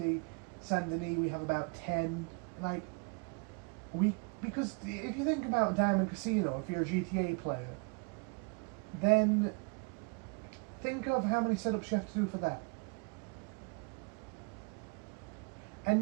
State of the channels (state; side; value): quieter; left; 33.7 dB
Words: Saint Denis, we have about 10. Like, because if you think about Diamond Casino, if you're a GTA player, then think of how many setups you have to do for that.